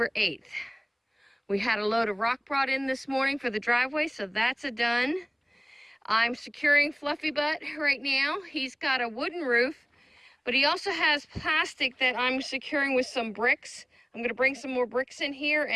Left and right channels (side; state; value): both; identical; correlation 1.00